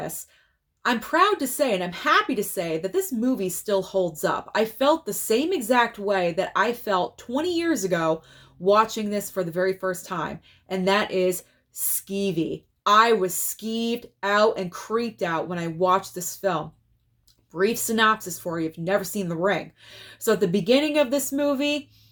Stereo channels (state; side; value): identical; both; correlation 1.00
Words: I'm proud to say, and I'm happy to say, that this movie still holds up. I felt the same exact way that I felt 20 years ago watching this for the very first time, and that is skeevy. I was skeeved out and creeped out when I watched this film. Brief synopsis for you if you've never seen The Ring. So at the beginning of this movie,